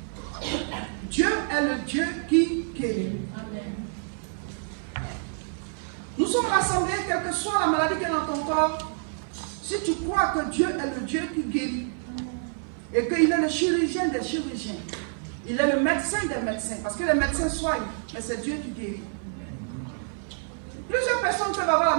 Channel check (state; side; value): silent; left; 60 dB below the other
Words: Dieu est le Dieu qui guérit. Nous sommes rassemblés, quelle que soit la maladie qui est dans ton corps, si tu crois que Dieu est le Dieu qui guérit, et qu'il est le chirurgien des chirurgiens, il est le médecin des médecins, parce que les médecins soignent, mais c'est Dieu qui guérit. Plusieurs personnes peuvent avoir